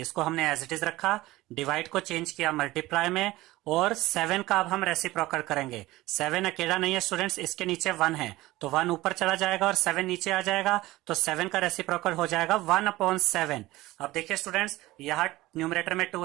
इसको हमने एज इट इज रखा। डिवाइड को चेंज किया मल्टीप्लाई में, और 7 का अब हम रेसिप्रोकल करेंगे। 7 अकेला नहीं है स्टूडेंट्स, इसके नीचे 1 है, तो 1 ऊपर चला जाएगा और 7 नीचे आ जाएगा। तो 7 का रेसिप्रोकल हो जाएगा 1 अपॉन 7। अब देखिए स्टूडेंट्स, यहाँ न्यूमरेटर में 2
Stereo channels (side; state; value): left; quieter; 18.2 dB